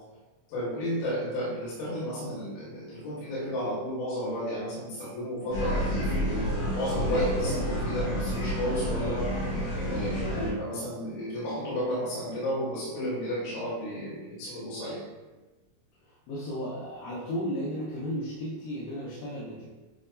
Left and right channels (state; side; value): late; right; 26 ms